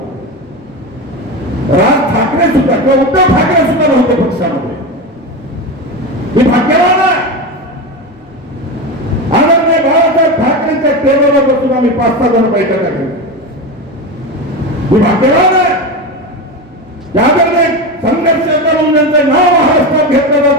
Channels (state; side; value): normal; both; correlation 0.20